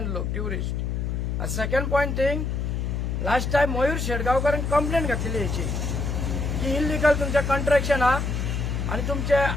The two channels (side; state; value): left; noise; hum, 1 dB below the sound